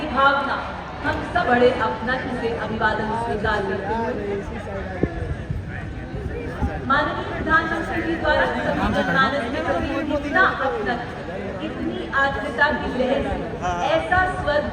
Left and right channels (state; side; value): identical; both; correlation 1.00